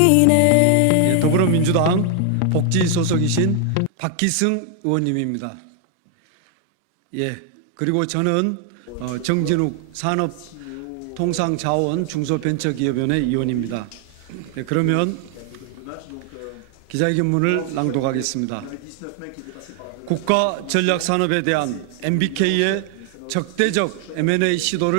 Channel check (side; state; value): both; different; correlation 0.00